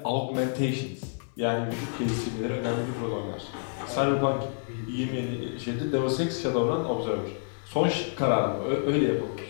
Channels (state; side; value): silent; right; digital silence